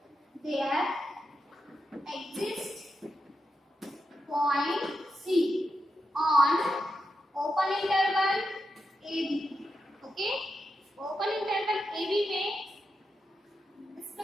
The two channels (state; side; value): normal; both; correlation 0.87